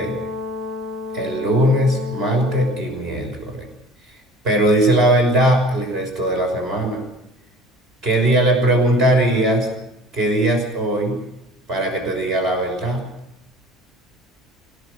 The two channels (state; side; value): normal; both; correlation 0.45